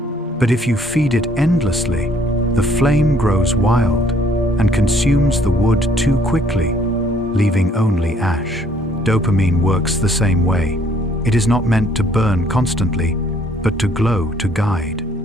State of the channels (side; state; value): both; normal; correlation 0.63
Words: But if you feed it endlessly, the flame grows wild and consumes the wood too quickly, leaving only ash. Dopamine works the same way. It is not meant to burn constantly, but to glow, to guide.